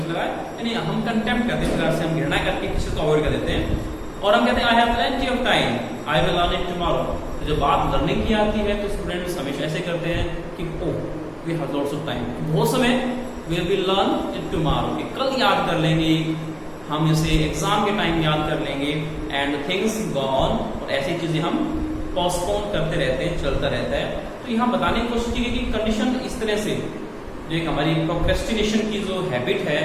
लगाया, यानी हम कंटेम्प्ट करते हैं, इस प्रकार से हम घृणा करके किसी को अवॉइड कर देते हैं। और हम कहते हैं I have plenty of time, I will learn it tomorrow. तो जब बात लर्निंग की आती है तो स्टूडेंट्स हमेशा ऐसे करते हैं कि oh we have lots of time, बहुत समय, we will learn it tomorrow, कि कल याद कर लेंगे, हम इसे एग्जाम के टाइम याद कर लेंगे, एंड थिंग्स गो ऑन, और ऐसी चीजें हम पोस्टपोन करते रहते हैं, चलता रहता है। तो यहाँ बताने की कोशिश की कि कंडीशन इस तरह से, जो एक हमारी प्रोक्रेस्टिनेशन की जो हैबिट है,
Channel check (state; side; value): identical; both; correlation 1.00